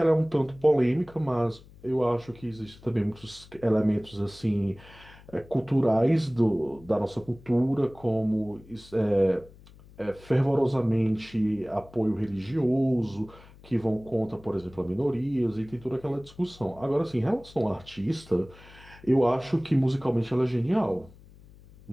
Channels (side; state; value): left; noise; hum, 23 dB below the sound